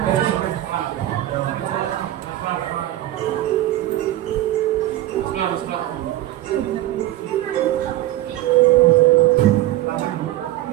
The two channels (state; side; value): quieter; left; 15.0 dB